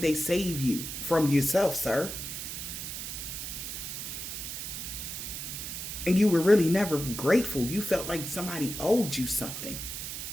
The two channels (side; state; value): right; noise; hiss, 6 dB below the sound